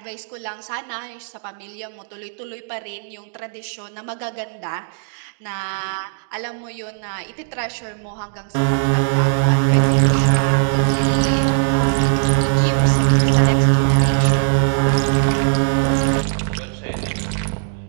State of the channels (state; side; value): silent; left; digital silence